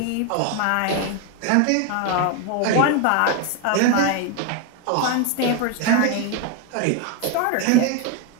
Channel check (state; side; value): different; both; correlation 0.01